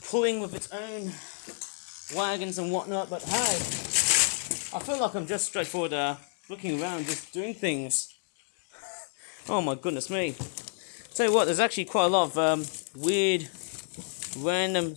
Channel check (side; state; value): right; silent; digital silence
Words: pulling with its own wagons and whatnot, but hey, I feel like I'm just straightforward looking around, just doing things. Oh my goodness me. Tell you what, there's actually quite a lot of weird, random